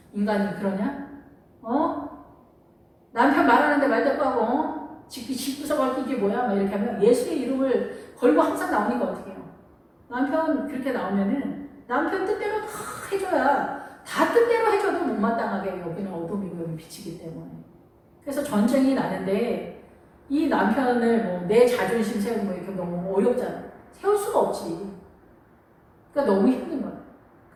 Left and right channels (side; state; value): both; identical; correlation 1.00